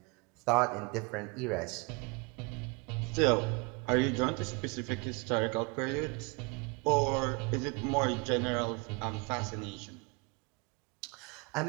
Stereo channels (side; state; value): left; quieter; 29.9 dB